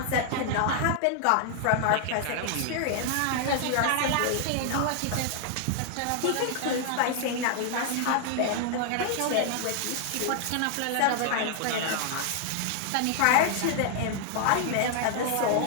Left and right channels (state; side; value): different; both; correlation 0.00